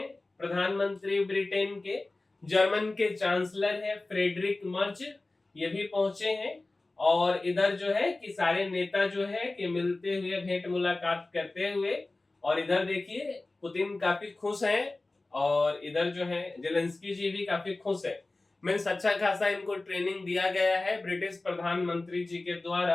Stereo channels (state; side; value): quieter; right; 3.1 dB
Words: प्रधानमंत्री ब्रिटेन के। जर्मन के चांसलर है फ्रेडरिक मर्च, ये भी पहुंचे हैं। और इधर जो है कि सारे नेता जो है कि मिलते हुए भेंट मुलाकात करते हुए। और इधर देखिए पुतिन काफी खुश हैं और इधर जो है जेलेंस्की जी भी काफी खुश है। मीन्स अच्छा खासा इनको ट्रेनिंग दिया गया है ब्रिटिश प्रधानमंत्री जी के